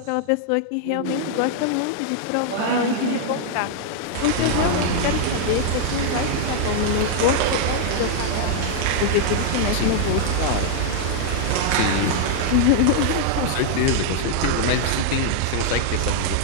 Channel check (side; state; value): both; different; correlation -0.01